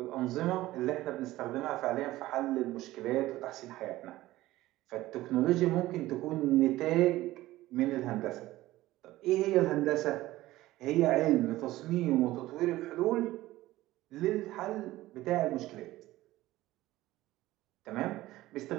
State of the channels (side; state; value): left; quieter; 16.7 dB